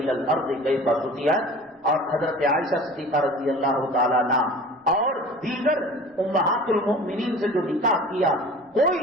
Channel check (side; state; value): both; normal; correlation 0.42